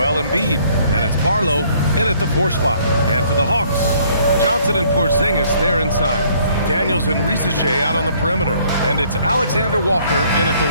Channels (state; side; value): inverted; both; correlation -0.62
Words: Embiid. And it's Barlow in at the 4 spot. And for the Hawks, Johnson and Porzingis, they're inside. Daniels and Risache out on the perimeter. And it's Alexander Walker in at the